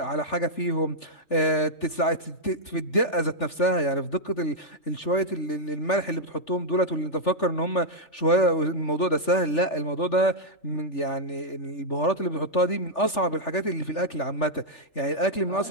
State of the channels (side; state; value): right; late; 3.4 ms